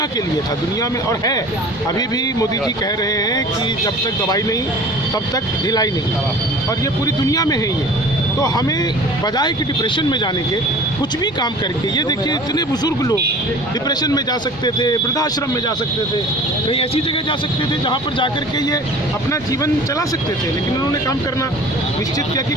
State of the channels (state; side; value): normal; both; correlation 0.43